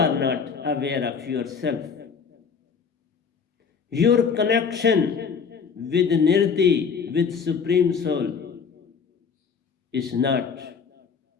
not aware of yourself. Your connection with Nirti, with Supreme Soul, is not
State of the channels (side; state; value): right; quieter; 6.0 dB